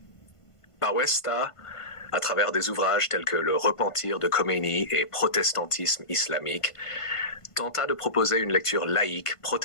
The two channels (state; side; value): late; right; 1.5 ms